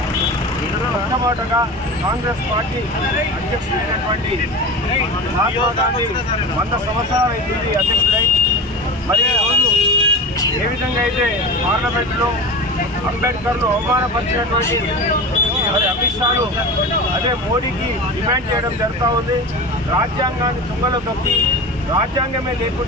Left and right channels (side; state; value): both; normal; correlation 0.30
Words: మొట్టమొదటగా కాంగ్రెస్ పార్టీ అధ్యక్షుడైనటువంటి మహాత్మా గాంధీ 100 సంవత్సరాలు అవుతుంది అధ్యక్షుడై. మరి ఈరోజు ఏ విధంగా అయితే పార్లమెంట్లో అంబేద్కర్ను అవమానపరిచినటువంటి మరి అమిత్ షాను అదే మోడీకి డిమాండ్ చేయడం జరుగుతూ ఉంది. రాజ్యాంగాన్ని తుంగలో తొక్కి రాజ్యాంగమే